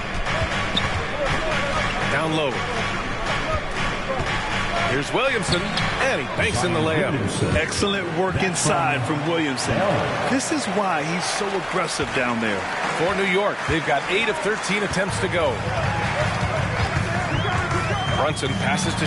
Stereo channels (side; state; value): both; identical; correlation 1.00